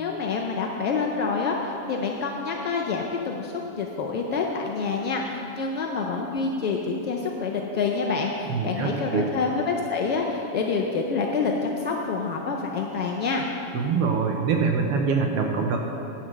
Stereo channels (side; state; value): left; late; 7.2 ms